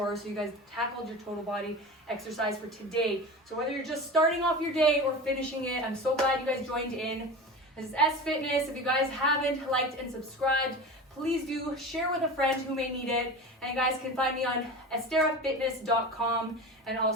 So you guys tackled your total body exercise for today. So whether you're just starting off your day or finishing it, I'm so glad you guys joined in. This is S Fitness. If you guys haven't liked and subscribed, please do share with a friend who may need it. And you guys can find me on esterafitness.com and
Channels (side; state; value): both; normal; correlation 0.31